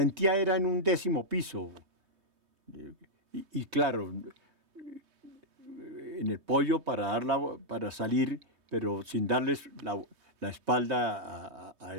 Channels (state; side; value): late; left; 3.2 ms